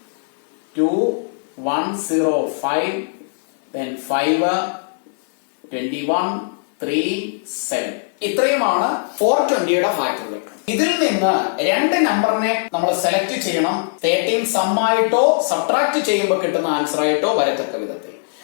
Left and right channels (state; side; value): silent; right; digital silence